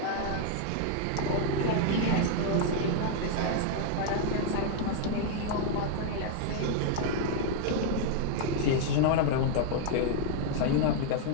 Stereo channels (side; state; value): both; different; correlation 0.00